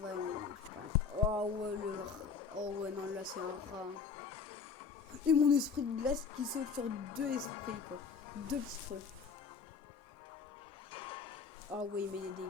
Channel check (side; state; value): right; quieter; 5.7 dB